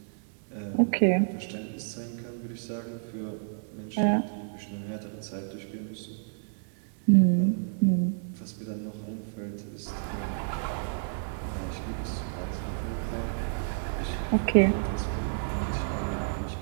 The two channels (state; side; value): silent; left; 58 dB below the other